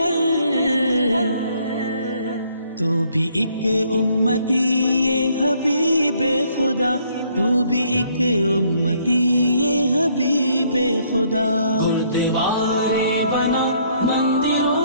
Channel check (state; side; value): inverted; both; correlation -0.66